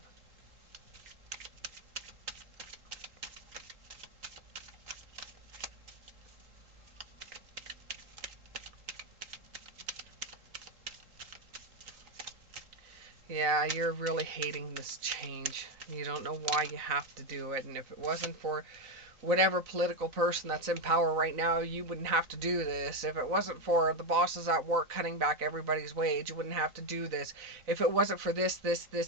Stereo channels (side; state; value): left; late; 3.8 ms